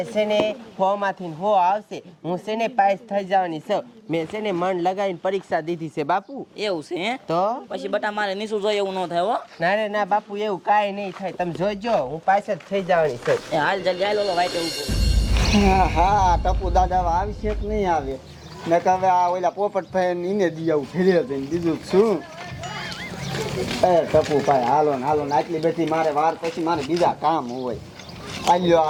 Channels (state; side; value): identical; both; correlation 1.00